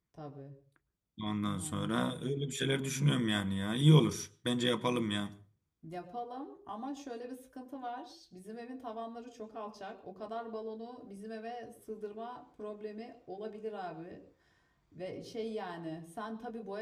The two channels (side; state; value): both; identical; correlation 1.00